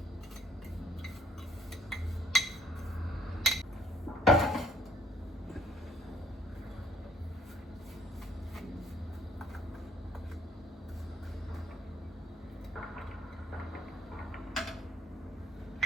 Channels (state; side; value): normal; both; correlation 0.61